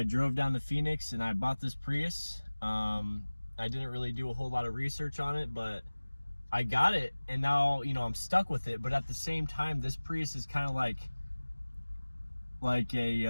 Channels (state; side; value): inverted; both; correlation -1.00